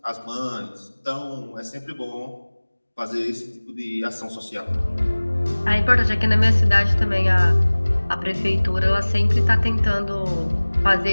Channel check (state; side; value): inverted; both; correlation -1.00